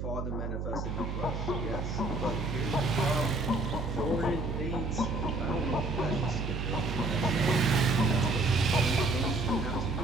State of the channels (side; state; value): right; noise; hum, 4 dB below the sound